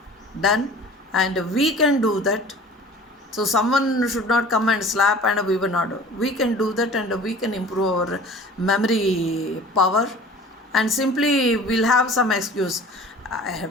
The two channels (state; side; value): normal; both; correlation 0.44